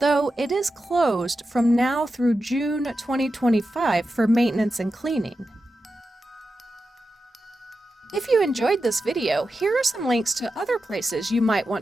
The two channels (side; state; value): both; normal; correlation 0.91